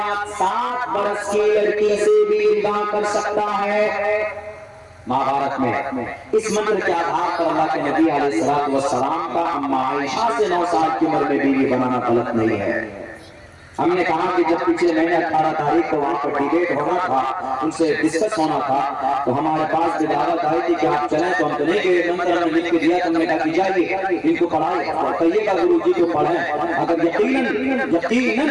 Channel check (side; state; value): both; identical; correlation 1.00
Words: 7 برس کی لڑکی سے بھی نکاح کر سکتا ہے۔ مہابھارت میں اس منتر کے آدھار پر اللہ کے نبی علیہ السلام کا اما عائشہ سے 9 سال کی عمر میں بیوی بنانا غلط نہیں ہے۔ ہم نے کہا کہ جب پچھلے مہینے 18 تاریخ کو وہاں پر ڈیبیٹ ہونا تھا، ان سے ڈسکس ہونا تھا، تو ہمارے پاس بھی دعوت آئی تھی کہ آپ چلیں، تو ہم تو نہیں گئے، منتر ہم نے لکھ کے دیا، تو ہم نے کہا کہ جائیے ان کو پڑھائیں اور کہیے گا گرو جی کو پڑھیں، اگر یقیناً